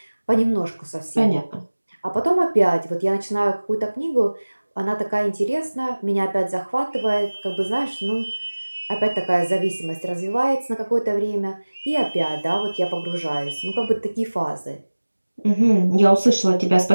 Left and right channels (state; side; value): inverted; both; correlation -1.00